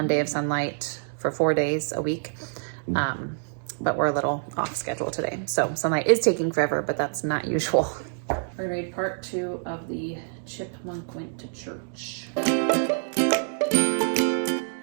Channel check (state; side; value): silent; left; 61 dB below the other